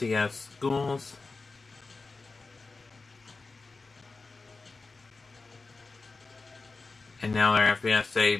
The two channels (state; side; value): quieter; right; 3.9 dB